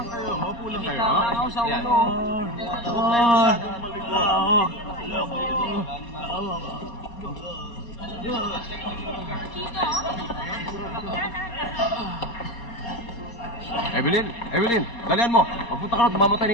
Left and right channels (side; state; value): right; late; 4.3 ms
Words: kayo, maupo lang kayo. Yan. Evelyn, Evelyn, dalian mo. Magpunta ka na, tumamatay